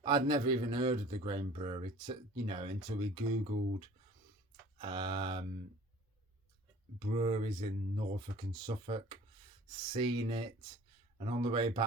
I'd never even heard of the Grain Brewery, you know, until we Googled breweries in Norfolk and Suffolk, seen it, and on the way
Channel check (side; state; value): both; normal; correlation 0.47